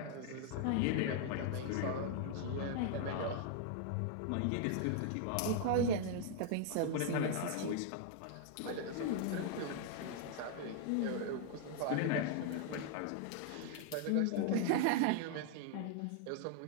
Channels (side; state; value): both; different; correlation 0.00